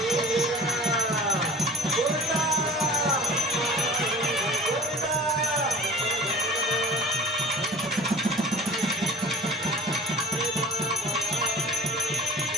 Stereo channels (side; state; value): both; normal; correlation 0.44